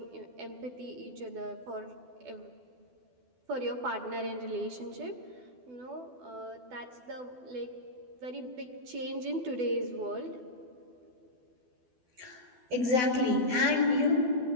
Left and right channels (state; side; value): late; left; 12 ms